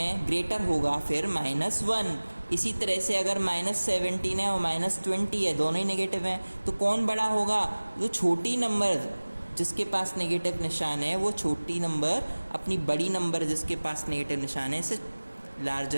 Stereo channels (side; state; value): both; inverted; correlation -1.00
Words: ग्रेटर होगा फिर -1। इसी तरह से अगर -17 है और -20 है, दोनों ही नेगेटिव हैं, तो कौन बड़ा होगा? जो छोटी नंबर जिसके पास नेगेटिव निशान है वो छोटी नंबर अपनी बड़ी नंबर जिसके पास नेगेटिव निशान है से